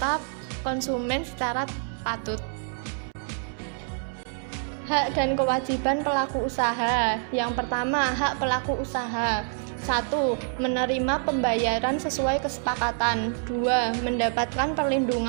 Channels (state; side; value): silent; left; 60 dB below the other